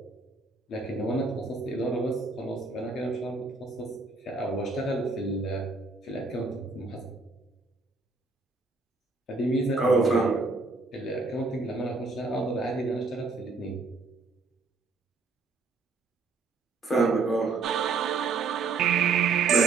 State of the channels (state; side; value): quieter; left; 3.9 dB